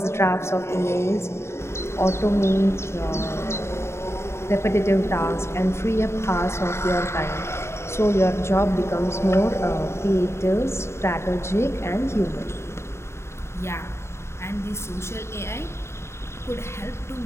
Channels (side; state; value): right; late; 0.13 ms